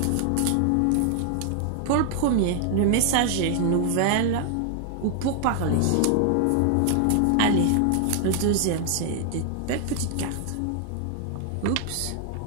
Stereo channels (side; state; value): both; different; correlation 0.00